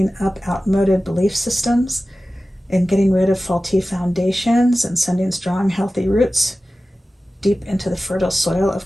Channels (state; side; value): normal; both; correlation 0.95